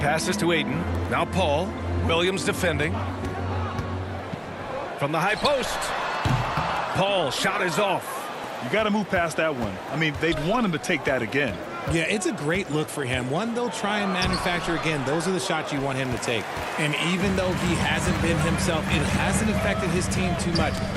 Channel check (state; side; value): identical; both; correlation 1.00